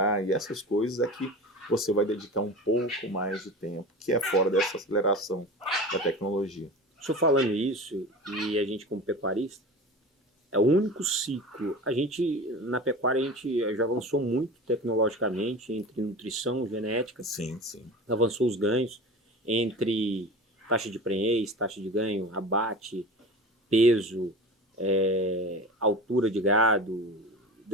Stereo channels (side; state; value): both; normal; correlation 0.33